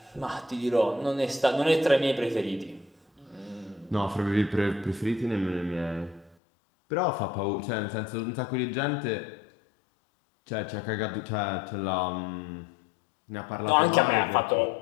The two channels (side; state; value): right; drops out; at 6.4 s